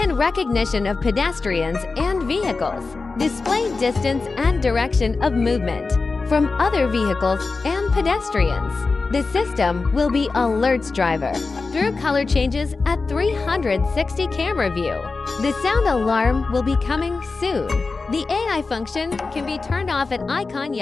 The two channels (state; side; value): quieter; right; 4.0 dB